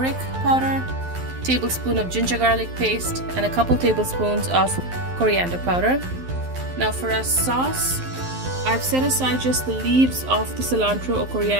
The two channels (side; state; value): left; late; 12 ms